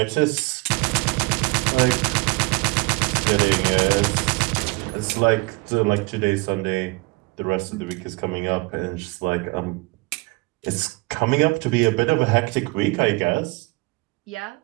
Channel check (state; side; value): quieter; left; 25.5 dB